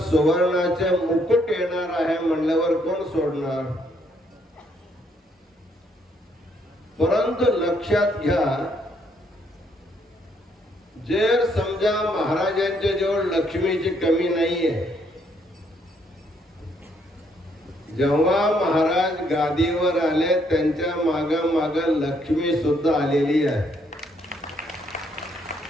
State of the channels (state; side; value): normal; both; correlation 0.71